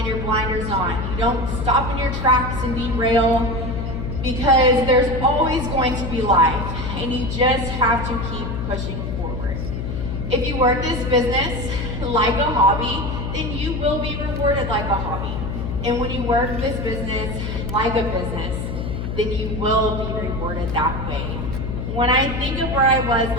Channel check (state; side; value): noise; left; hum, 4 dB below the sound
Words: your blinders on. You don't stop in your tracks and derail, because there's always going to be life, and you just have to keep pushing forward. If you work this business like a hobby, then you will be rewarded like a hobby. And when you work this business like a business, then you will be rewarded that way. When I think of where I was